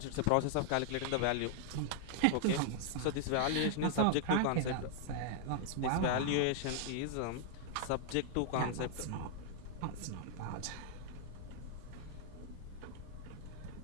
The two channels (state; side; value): different; both; correlation -0.01